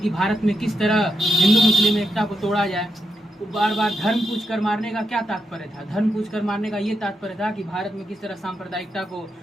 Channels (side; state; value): both; normal; correlation 0.84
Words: भारत में किस तरह हिंदू मुस्लिम एकता को तोड़ा जाए। वो बार बार धर्म पूछ कर मारने का क्या तात्पर्य था? धर्म पूछ कर मारने का ये तात्पर्य था कि भारत में किस तरह सांप्रदायिकता को